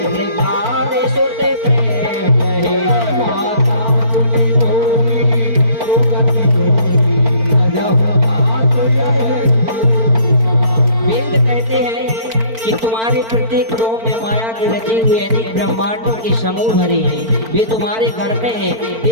मृगार सुत प्रेम है माता पुनि बोली रोगति बोली जब बात यह वेद कहते हैं कि तुम्हारे प्रत्येक रोम में माया के रचे हुए अनेक ब्रह्मांडों के समूह भरे हैं, वे तुम्हारे घर में हैं।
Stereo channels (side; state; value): left; late; 4.4 ms